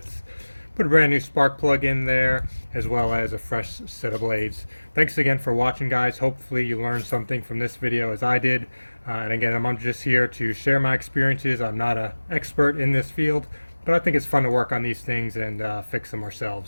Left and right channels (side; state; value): both; inverted; correlation -1.00